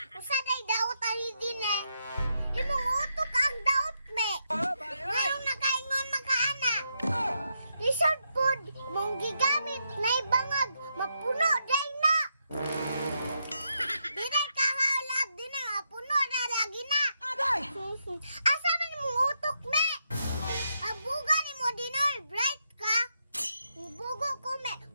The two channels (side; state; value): both; inverted; correlation -0.81